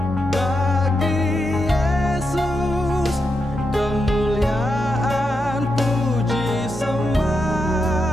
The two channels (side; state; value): both; normal; correlation 0.85